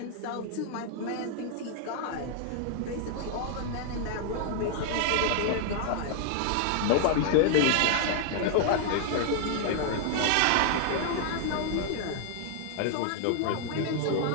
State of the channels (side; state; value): both; different; correlation -0.01